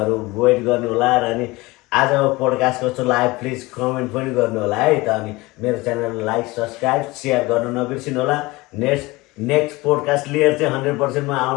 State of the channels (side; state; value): right; quieter; 21.9 dB